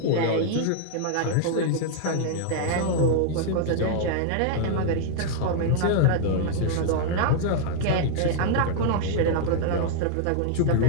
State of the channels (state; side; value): different; both; correlation -0.01